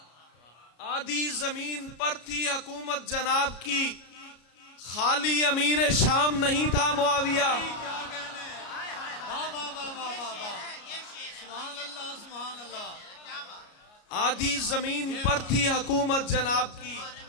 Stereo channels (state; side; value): late; right; 33 ms